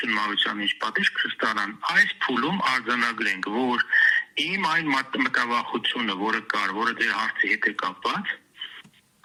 Մավությանը ինչ պատիժ կստանան, այս փուլում արձանագրենք, որ իմ այն մտավախությունը, որը կար, որը ձեր հարցի հետ է կապված,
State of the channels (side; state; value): both; identical; correlation 1.00